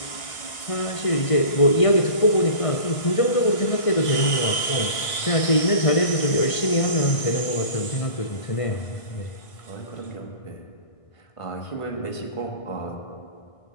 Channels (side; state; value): right; late; 1.5 ms